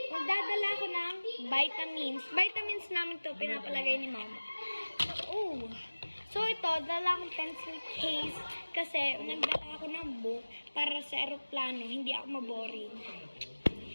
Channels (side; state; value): both; inverted; correlation -1.00